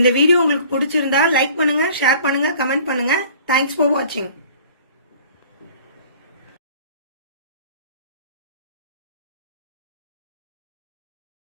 வீடியோ உங்களுக்கு பிடிச்சிருந்தா லைக் பண்ணுங்க, ஷேர் பண்ணுங்க, கமெண்ட் பண்ணுங்க. தேங்க்ஸ் ஃபார் வாட்சிங்.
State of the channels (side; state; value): both; inverted; correlation -0.49